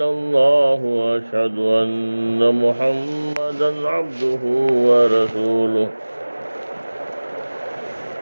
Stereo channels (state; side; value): inverted; both; correlation -1.00